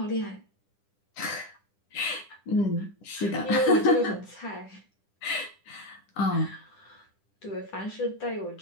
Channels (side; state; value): right; late; 10 ms